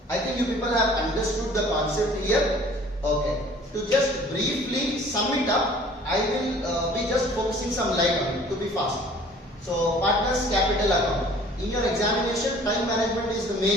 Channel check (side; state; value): both; normal; correlation 0.51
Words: I think you people have understood the concept here. Okay. To just briefly sum it up, I will be just focusing some light on it to be fast. So partners capital account. In your examination, time management is the